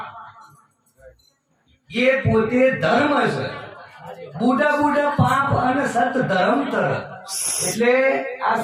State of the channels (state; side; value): identical; both; correlation 1.00